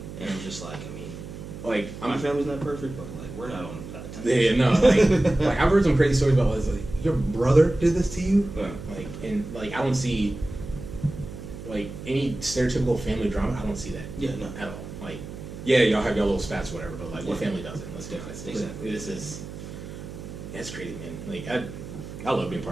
And I'm just like, I mean, like my family's not perfect, but like we're not on that type. Yeah, no, like I've heard some crazy stories about like your brother did this to you, like and like I don't see like any stereotypical family drama. I don't see that. Yeah, no, at all. Like, yeah, y'all have your little spats, or whatever, but like what family doesn't? Let's do it. Exactly. That's crazy, man. Like I love being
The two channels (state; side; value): noise; right; hum, 11 dB below the sound